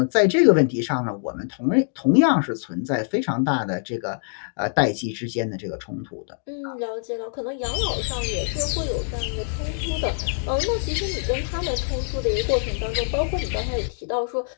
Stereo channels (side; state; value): right; silent; digital silence